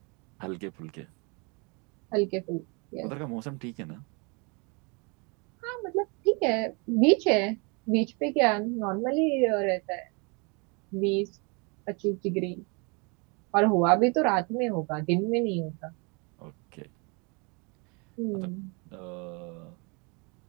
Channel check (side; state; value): left; quieter; 31.7 dB